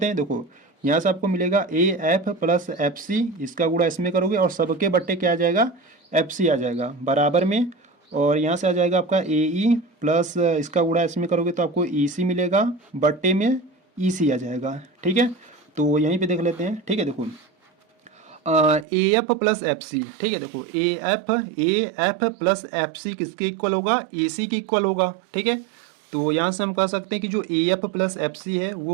हैं। देखो यहाँ से आपको मिलेगा A F plus F C, इसका गुणा इसमें करोगे और सबके बट्टे क्या आ जाएगा, एफ सी आ जाएगा बराबर में, और यहाँ से आ जाएगा आपका ए ई प्लस इसका गुणा इसमें करोगे तो आपको ई सी मिलेगा, बट्टे में ई सी आ जाएगा, ठीक है। तो यहीं पे देख लेते हैं, ठीक है। देखो A F plus F C, ठीक है, देखो A F plus F C किसके इक्वल होगा, ए सी के इक्वल होगा, ठीक है। तो यहाँ से हम कह सकते हैं कि जो A F plus F C है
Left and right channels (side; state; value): left; drops out; at 18.9 s